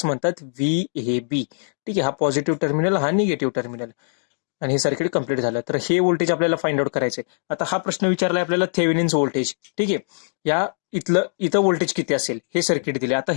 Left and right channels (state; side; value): silent; right; digital silence